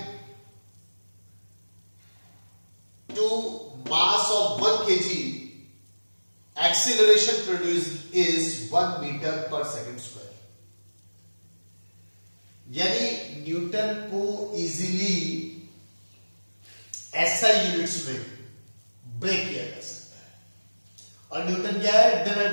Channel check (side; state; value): both; inverted; correlation -1.00